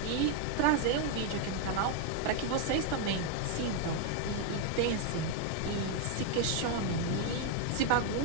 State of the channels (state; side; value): different; both; correlation 0.01